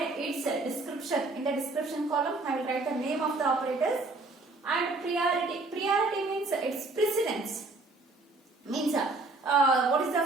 its description. In the description column I will write the name of the operators and priority. Priority means its precedence. Means what is the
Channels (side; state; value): left; quieter; 3.3 dB